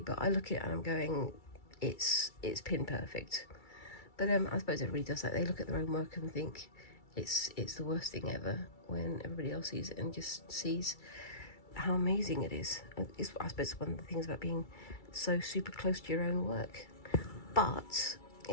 but I look at it and I'm going, it's pin perfect. But I suppose everybody does that. They look at their own work and think it's the worst thing ever, when everybody else sees it and just sees how amazing it is. It's, I suppose, one of the things about being so super close to your own work. But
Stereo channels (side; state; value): right; late; 2.3 ms